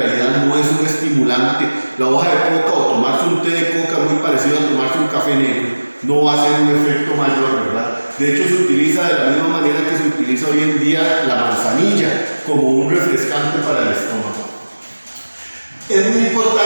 no es un estimulante. La hoja de coca o tomarse un té de coca muy parecido a tomarse un café negro no va a ser un efecto mayor, ¿verdad? De hecho, se utiliza de la misma manera que se utiliza hoy en día la manzanilla como un refrescante para el estómago. Es muy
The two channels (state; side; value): inverted; both; correlation -1.00